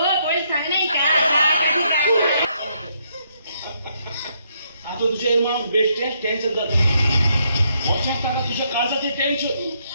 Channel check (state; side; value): inverted; both; correlation -0.74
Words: आता तुझे मग बेस्ट टेन्शन जात लक्षात टाका तुझ्या काळजाचे टेन्शन